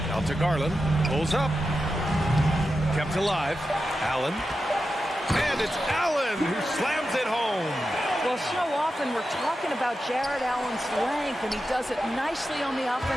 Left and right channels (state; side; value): normal; both; correlation 0.90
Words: Out to Garland, pulls up. Kept alive. Allen. And it's Allen who slams it home. Well, so often we're talking about Jared Allen's length, and he does it nicely on the